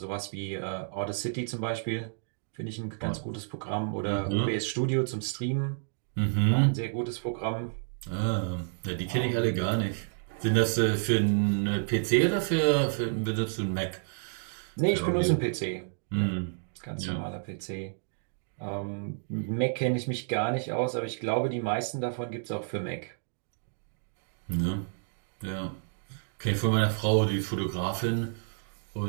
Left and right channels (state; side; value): silent; left; digital silence